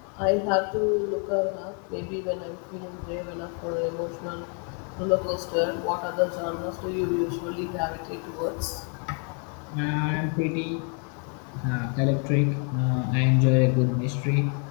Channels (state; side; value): quieter; right; 39.8 dB